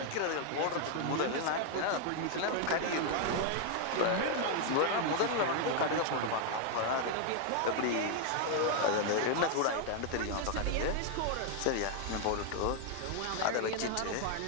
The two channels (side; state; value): both; different; correlation 0.00